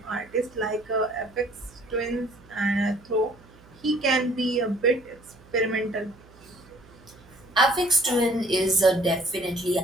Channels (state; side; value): noise; right; hum, 25 dB below the sound